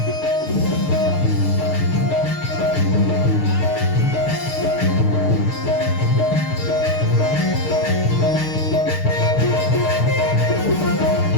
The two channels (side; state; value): right; late; 6.6 ms